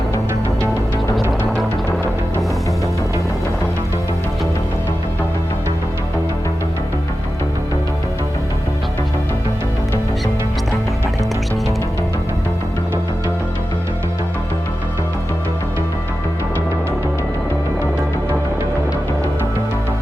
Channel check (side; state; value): both; normal; correlation 0.93